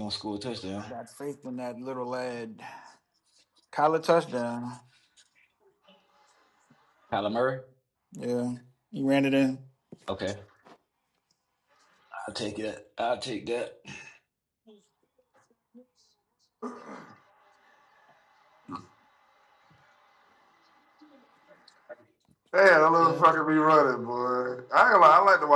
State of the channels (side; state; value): both; identical; correlation 1.00